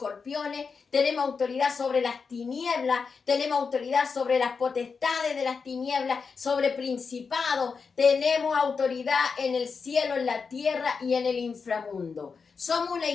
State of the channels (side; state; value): right; quieter; 5.3 dB